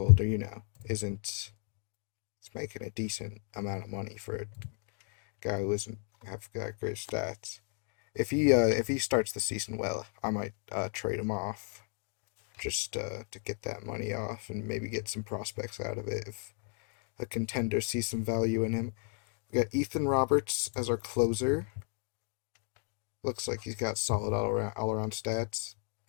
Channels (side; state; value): right; quieter; 40.0 dB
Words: isn't he's making a decent amount of money for a guy who doesn't have got great stats. If he starts the season well, I might trade him off just to get that money off and maybe get some prospects out of it if a contender sees some value in him. We got Ethan Roberts as our closer. Looks like he's got solid all around stats.